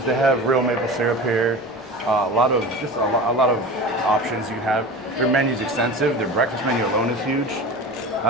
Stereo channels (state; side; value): normal; both; correlation 0.31